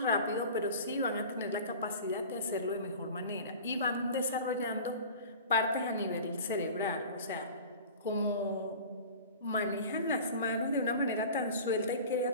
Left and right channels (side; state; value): both; inverted; correlation -0.39